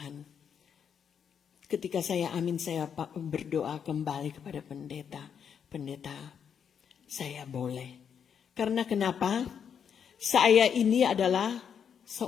Ketika saya berdoa kembali kepada pendeta, saya boleh. Karena kenapa? Saya ini adalah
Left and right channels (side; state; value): right; quieter; 7.6 dB